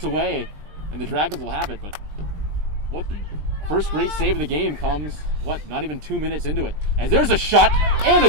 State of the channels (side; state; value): left; late; 20 ms